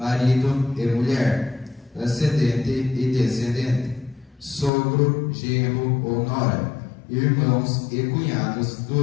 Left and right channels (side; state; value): right; drops out; at 4.7 s